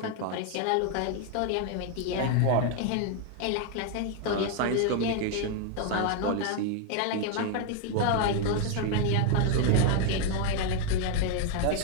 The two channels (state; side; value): different; both; correlation 0.01